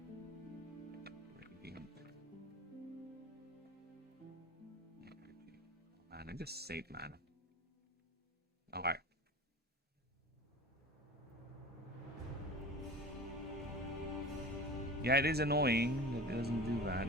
Man, I just saved mana. Alright. Yeah, it is annoying that it doesn't do that,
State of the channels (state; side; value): normal; both; correlation 0.36